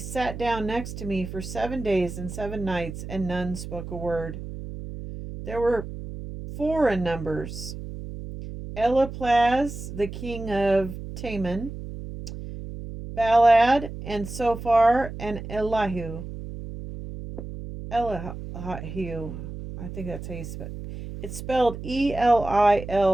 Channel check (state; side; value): noise; right; hum, 9 dB below the sound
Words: down next to me for 7 days and 7 nights, and none spoke a word. There were 4 in numbers: Eliphaz, the king of Teman, Baldad, and Sophar, and Elihu. Elihu, I think that's how you spell it. It's spelled